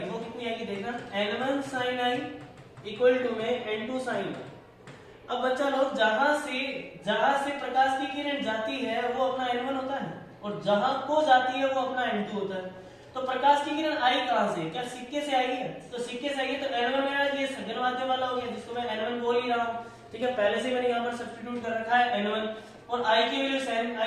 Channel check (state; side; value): identical; both; correlation 1.00